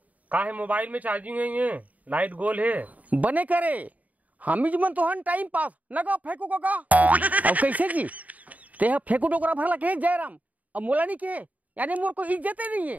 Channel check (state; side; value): late; left; 0.073 ms